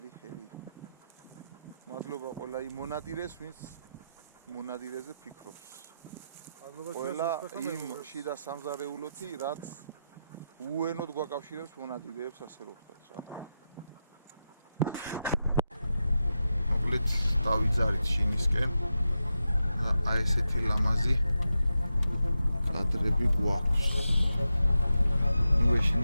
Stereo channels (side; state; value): both; inverted; correlation -0.88